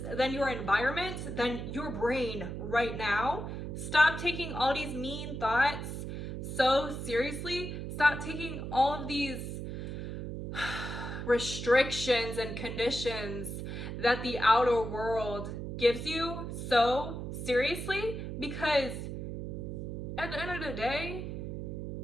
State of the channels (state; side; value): noise; right; hum, 6 dB below the sound